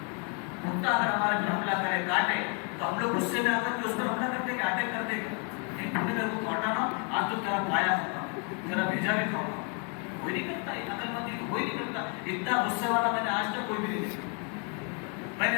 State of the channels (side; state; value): right; quieter; 37.3 dB